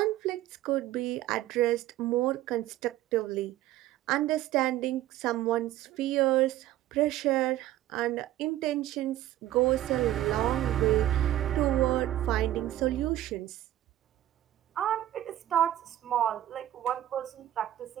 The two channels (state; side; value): quieter; left; 13.8 dB